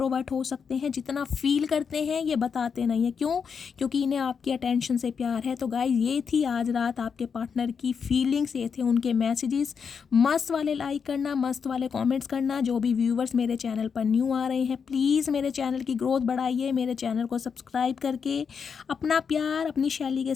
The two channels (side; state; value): right; quieter; 6.3 dB